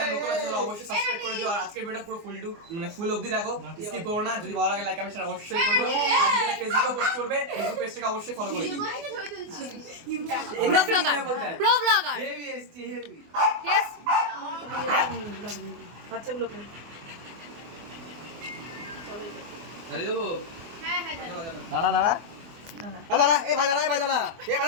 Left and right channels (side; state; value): left; late; 24 ms